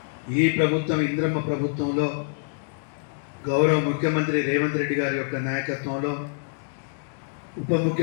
ఈ ప్రభుత్వం, ఇందిరమ్మ ప్రభుత్వంలో గౌరవ ముఖ్యమంత్రి రేవంత్ రెడ్డి గారి యొక్క నాయకత్వంలో, ఉప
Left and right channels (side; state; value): right; silent; digital silence